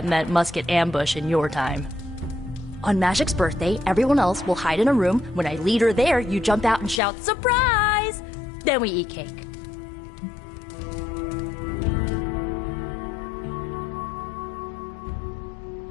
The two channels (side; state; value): right; drops out; at 7.0 s